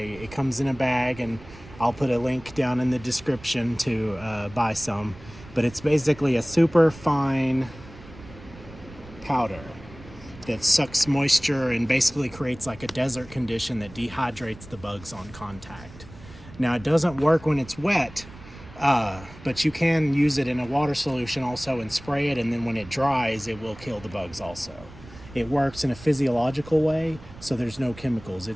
comes in a bag, and I'll put a link down in the description to buy some. But it's basically a super fine powder that sucks moisture and basically creates like a desert condition that dehydrates the bugs on contact. Now it doesn't work when it's wet, but you can use it in a water solution also and spray it, and then when it dries it will kill the bugs also. It works in a physiological way, so there's no chemicals.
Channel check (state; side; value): noise; right; rumble, 18 dB below the sound